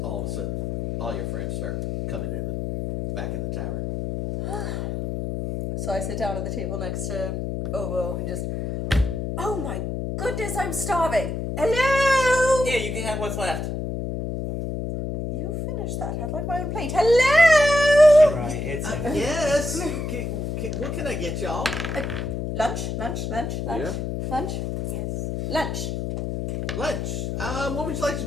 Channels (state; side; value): noise; left; hum, 3 dB below the sound